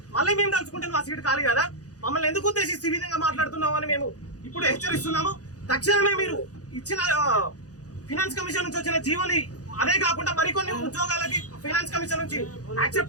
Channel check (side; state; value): right; late; 0.67 ms